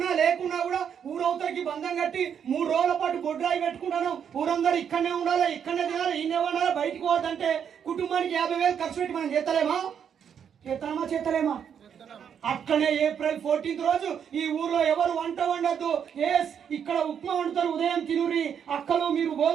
లేకున్నా కూడా ఊరవతలకి బంధం కట్టి 3 రోజుల పాటు బొడ్రాయి పెట్టుకుంటాను. ఊరందరూ ఇక్కడనే ఉండాలి, ఇక్కడనే తినాలి, ఈయనే ఉండాలి, బయటకు పోవద్దంటే కుటుంబానికి 50,000 ఖర్చు పెట్టి మనం చేస్తలేమా? అట్లనే ఏప్రిల్ 14 రోజు ఈ ఊర్లో ఎవరు వంట వండద్దు. ఇక్కడ ఉప్మా వండుతారు, ఉదయం తినురి. అక్కలు మీరు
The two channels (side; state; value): left; quieter; 8.0 dB